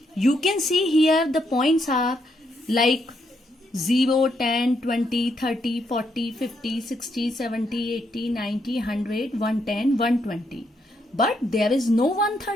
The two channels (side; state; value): both; normal; correlation 0.77